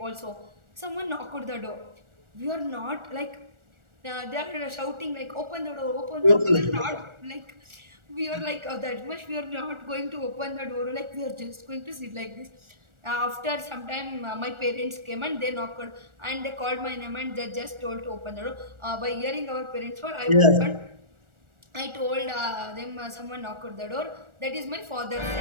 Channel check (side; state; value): left; late; 1.4 ms